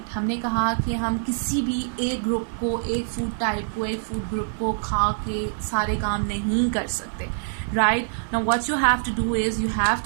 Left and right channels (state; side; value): silent; left; 57 dB below the other